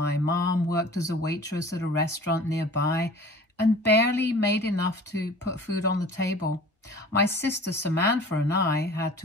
mom worked as a waitress at a restaurant nearby and barely made enough to put food on the table. My sister Samantha and I had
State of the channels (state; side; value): normal; both; correlation 0.44